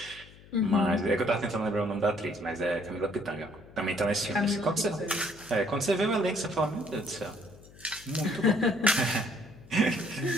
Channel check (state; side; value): noise; left; hum, 22 dB below the sound